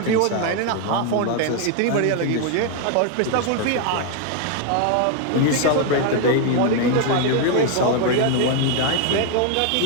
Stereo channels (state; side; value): different; both; correlation 0.01